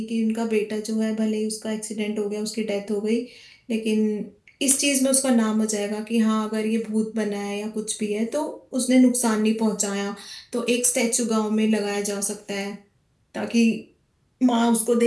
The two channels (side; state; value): both; identical; correlation 1.00